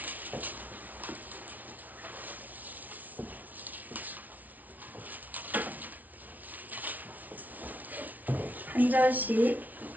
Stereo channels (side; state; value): left; late; 0.077 ms